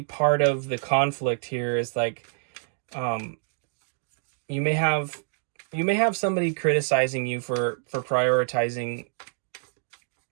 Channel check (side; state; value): left; silent; digital silence